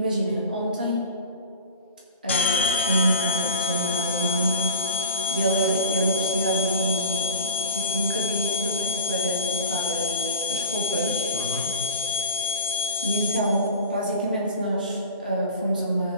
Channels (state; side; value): inverted; both; correlation -0.36